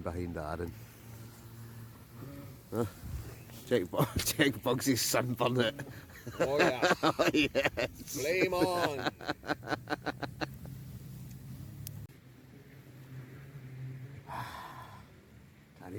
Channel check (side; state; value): both; identical; correlation 1.00